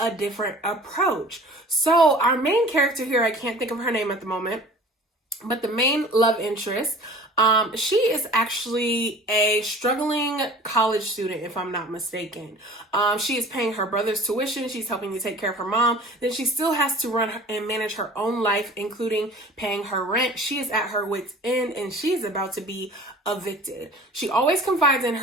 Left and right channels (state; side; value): normal; both; correlation 0.44